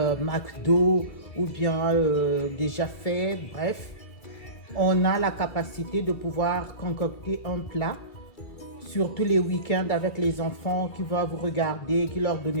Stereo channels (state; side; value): late; right; 2.2 ms